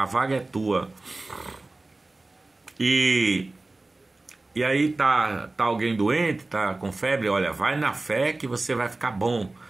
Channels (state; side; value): quieter; left; 3.1 dB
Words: vaga é tua. E aí tá alguém doente, tá com febre, olha, vai na fé que você vai ficar bom